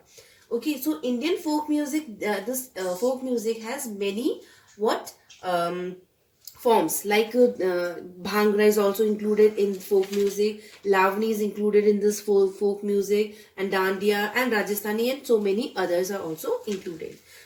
Okay, so Indian folk music, this folk music has many what forms, like bhangra is also included in folk music, lavani is included in this folk music, and dandiya and rajasthani and so many others are also included.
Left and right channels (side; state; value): both; identical; correlation 1.00